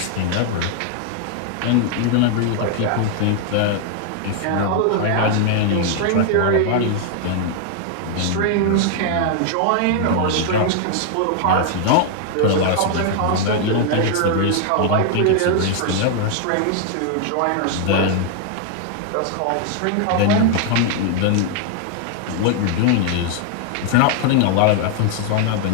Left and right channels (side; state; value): both; different; correlation 0.00